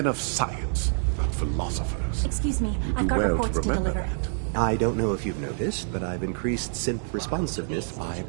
of science, not philosophers. Excuse me, You I've do got well reports to remember deliver. that. I don't know if you've noticed, but I've increased synth responsiveness by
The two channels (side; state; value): left; silent; 60 dB below the other